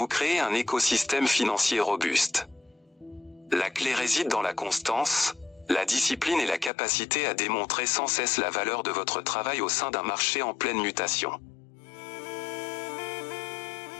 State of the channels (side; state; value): right; drops out; at 6.7 s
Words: créez un écosystème financier robuste. La clé réside dans la constance, la discipline et la capacité à démontrer sans cesse la valeur de votre travail au sein d'un marché en pleine mutation.